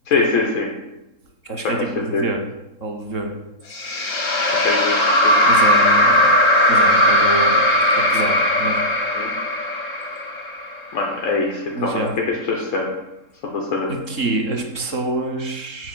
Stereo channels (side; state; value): right; late; 3.7 ms